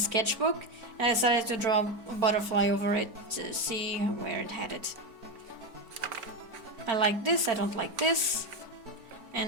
and I decided to draw a butterfly over it to see where it headed. I like this, I don't like this.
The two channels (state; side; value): late; left; 4.5 ms